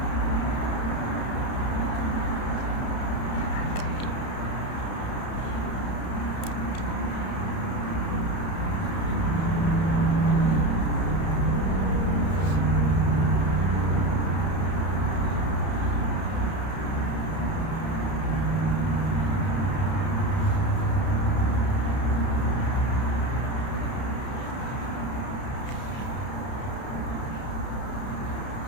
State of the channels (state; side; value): late; right; 31 ms